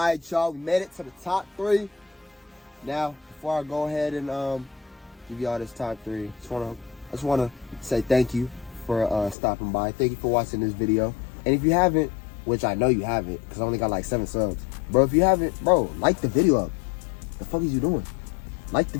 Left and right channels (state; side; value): drops out; right; at 9.3 s